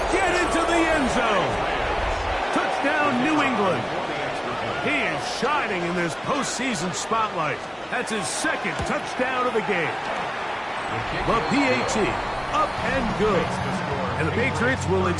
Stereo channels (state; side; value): identical; both; correlation 1.00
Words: get into the end zone. Touchdown, New England. He is shining in this postseason spotlight. That's his 2nd touchdown of the game. The PAT, up and good. And the Patriots will